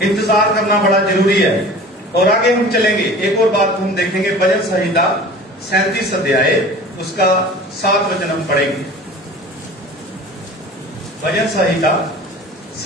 इंतजार करना बड़ा जरूरी है। और आगे हम चलेंगे, एक और बात हम देखेंगे, भजन संहिता 37 अध्याय उसका 7 वचन हम पढ़ेंगे। भजन संहिता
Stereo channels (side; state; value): both; normal; correlation 0.41